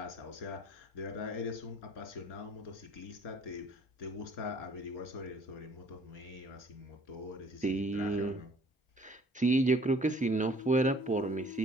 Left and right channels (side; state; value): both; normal; correlation 0.56